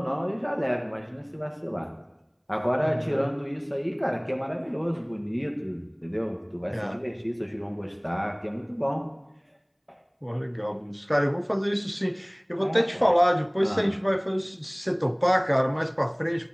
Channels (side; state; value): both; identical; correlation 1.00